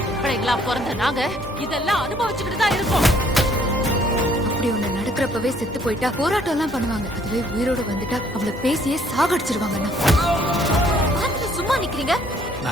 பிள்ளைங்களா பிறந்த நாங்க இதெல்லாம் அனுபவிச்சுக்கிட்டு தான் இருக்கோம். அப்படி ஒண்ணு நடக்கிறப்பவே செத்து போயிட்டா போராட்டம் எல்லாம் பண்ணுவாங்க. அதுவே உயிரோடு வந்துட்டா அவளை பேசியே சாகடிச்சிருவாங்க. சும்மா நிக்கிறீங்க?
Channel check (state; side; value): normal; both; correlation 0.63